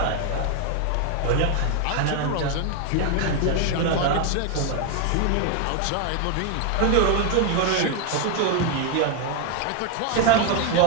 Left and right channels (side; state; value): both; different; correlation 0.01